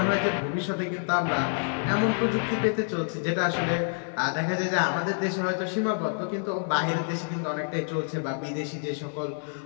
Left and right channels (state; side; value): silent; right; digital silence